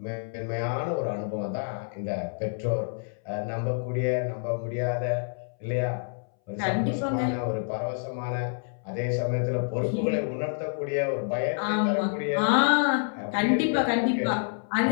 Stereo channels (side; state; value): right; silent; 60 dB below the other